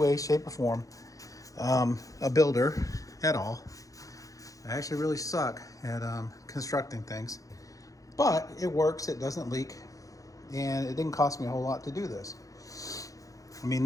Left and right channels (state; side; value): late; right; 0.17 ms